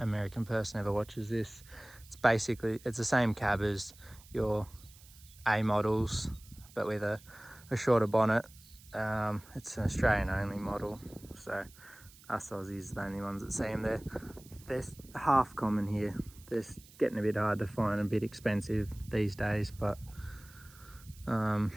person ever watches this, it's the same cab as your A models, but with a shorter bonnet. It's an Australian only model, so us Aussies are the only ones that see them. They're half common here. They're getting a bit hard to find, a bit expensive these days, but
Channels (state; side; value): noise; right; hiss, 23 dB below the sound